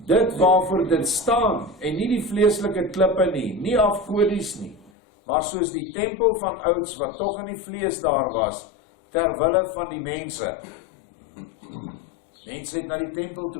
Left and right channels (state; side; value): drops out; right; at 4.9 s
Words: waarvoor dit staan, en nie die vleeslike klippe nie afgodies nie, maar soos die tempel van ouds, wat tog in die vlees daar was, terwille van die mense. Mense het na die tempel